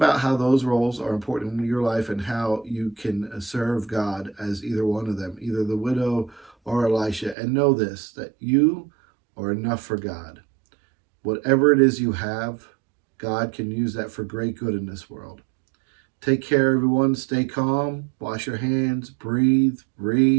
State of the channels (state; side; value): drops out; left; at 7.4 s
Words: how those roles are important in your life and how you can serve God as either one of them, either the widow or Elisha. And know this, that you are enough for God. Whatever it is you have, God can use that for great good in this world. Take care, everyone. Stay calm. Wash your hands. Breathe.